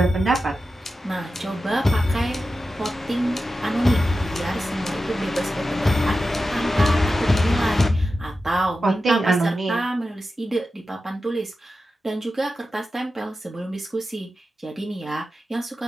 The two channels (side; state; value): both; normal; correlation 0.92